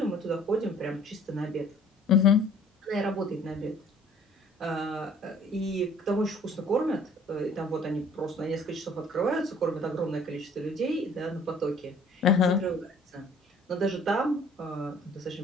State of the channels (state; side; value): normal; both; correlation 0.54